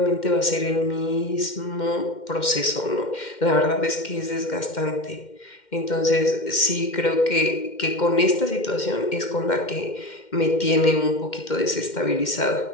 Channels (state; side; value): late; right; 2.1 ms